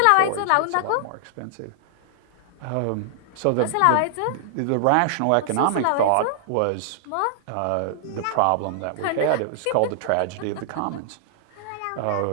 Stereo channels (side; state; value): both; different; correlation -0.01